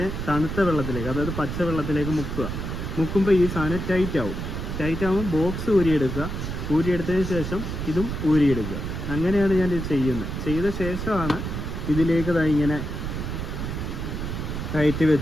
തണുത്ത വെള്ളത്തിലേക്ക്, അതായത് പച്ച വെള്ളത്തിലേക്ക് മുക്കുമ്പോൾ ഈ സാധനം ടൈറ്റ് ആകുമ്പോൾ ബോക്സ് ഊരിയെടുത്തതിന് ശേഷം ഇതും ഊരിയെടുക്കുക. അങ്ങനെയാണ് ഞാൻ ഇത് ചെയ്യുന്നത്. ചെയ്ത ശേഷമാണ് ഇതിലേക്ക് ഇങ്ങനെ കയറ്റി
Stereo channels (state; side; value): noise; right; rumble, 4 dB below the sound